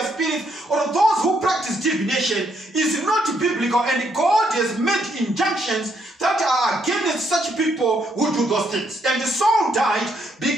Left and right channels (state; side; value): normal; both; correlation 0.74